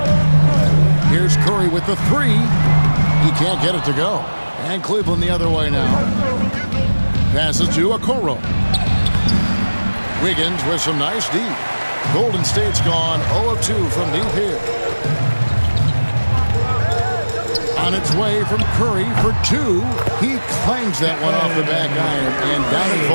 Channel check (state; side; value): inverted; both; correlation -1.00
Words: Here's Curry with the 3. He can't get it to go. And Cleveland the other way now. Passes to Okoro. Wiggins with some nice D. Golden State's gone 0 of 2 from deep here. On its way from Curry for 2. He clangs that one off the back iron, and down it